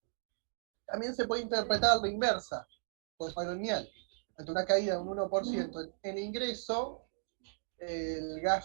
También se puede interpretar la inversa, por patronial. Ante una caída de un 1% en ingreso, el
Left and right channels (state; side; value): silent; left; digital silence